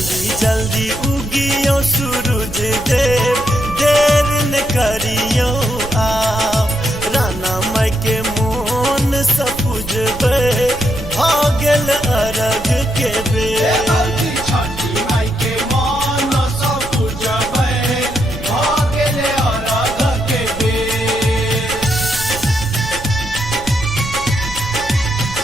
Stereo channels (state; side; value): noise; right; rumble, 12 dB below the sound